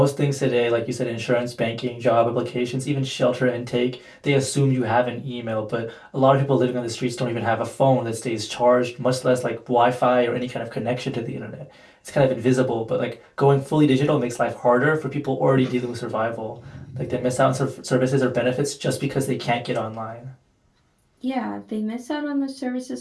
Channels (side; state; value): both; identical; correlation 1.00